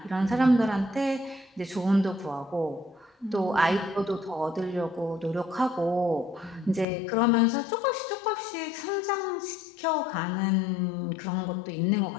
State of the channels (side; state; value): right; drops out; at 6.9 s